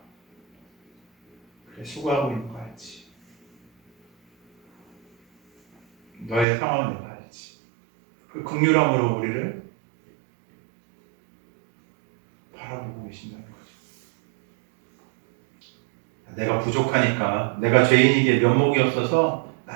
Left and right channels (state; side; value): drops out; left; at 6.5 s